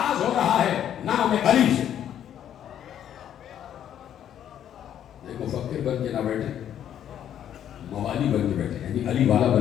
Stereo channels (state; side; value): quieter; right; 10.2 dB